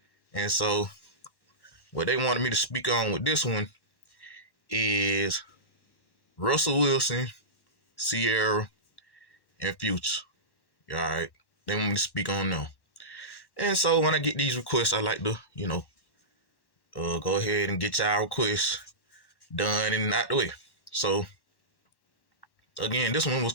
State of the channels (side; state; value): right; late; 1.1 ms